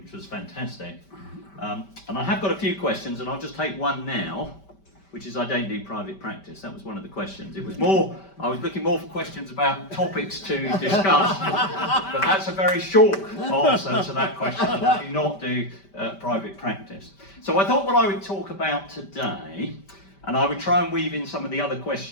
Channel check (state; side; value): late; right; 5.1 ms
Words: was fantastic. And I have got a few questions, and I'll just take one now, which is I don't do private practice. That was one of the questions. It was more, I was looking more for questions about topics to discuss, but that's a very short answer to that question. I do not do private practice. So I thought what I would talk about today, and I would try and weave in some of the other